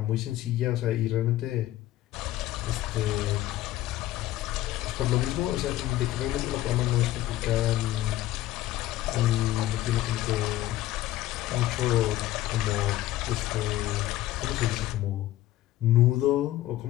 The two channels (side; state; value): right; quieter; 15.0 dB